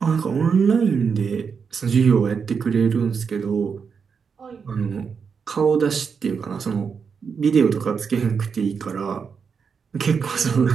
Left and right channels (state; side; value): quieter; left; 6.0 dB